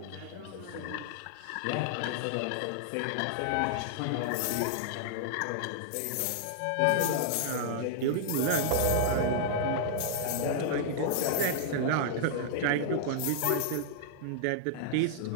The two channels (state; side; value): different; both; correlation -0.01